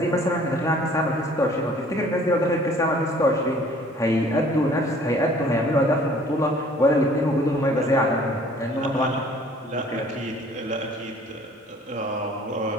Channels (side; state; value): both; normal; correlation 0.54